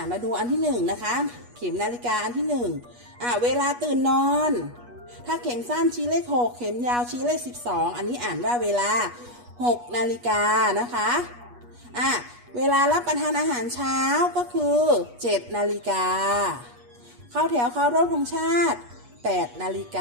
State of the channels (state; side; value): late; left; 8.3 ms